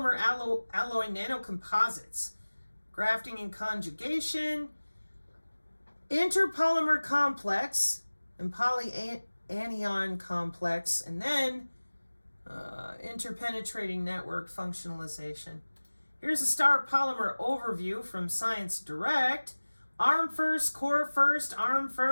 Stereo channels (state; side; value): inverted; both; correlation -1.00